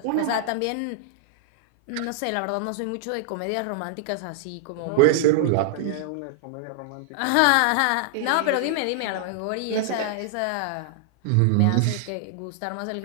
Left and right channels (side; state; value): both; different; correlation -0.01